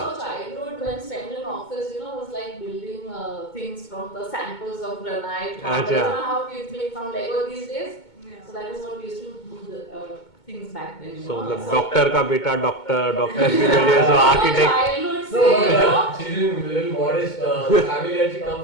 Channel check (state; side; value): late; right; 2.2 ms